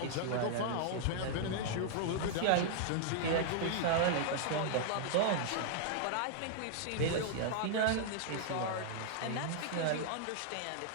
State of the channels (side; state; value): both; different; correlation -0.01